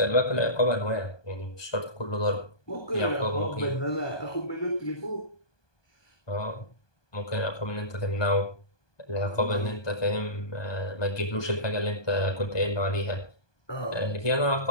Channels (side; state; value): right; late; 1.2 ms